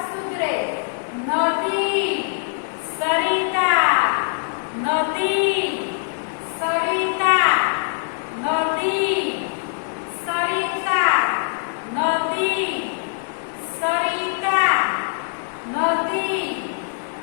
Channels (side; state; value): right; silent; 64 dB below the other